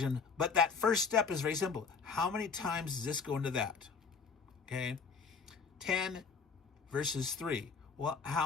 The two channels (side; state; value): right; quieter; 5.3 dB